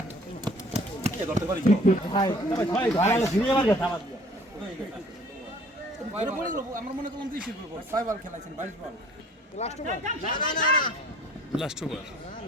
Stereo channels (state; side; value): normal; both; correlation 0.54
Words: আমরা মনে করলাম 20 করব 6 বল খেলাইছেন 22 বল লাস্ট বল লাস্ট ওভার।